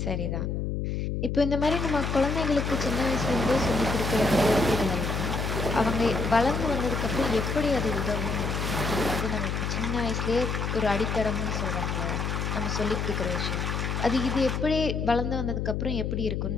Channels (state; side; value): noise; left; hum, 1 dB below the sound